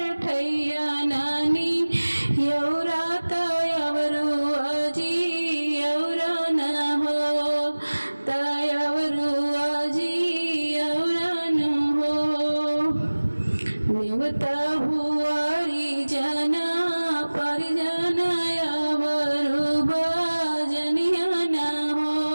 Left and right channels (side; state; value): both; inverted; correlation -1.00